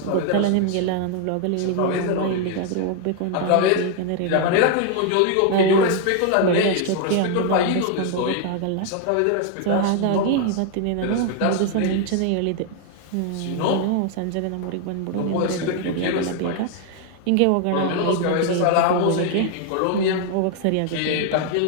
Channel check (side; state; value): both; different; correlation 0.00